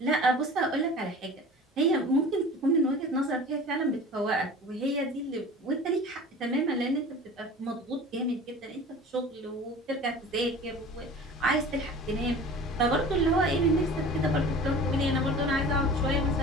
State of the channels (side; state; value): both; normal; correlation 0.40